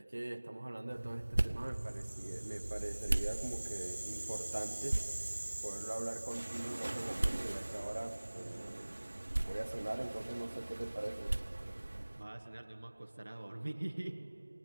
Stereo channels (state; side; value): inverted; both; correlation -1.00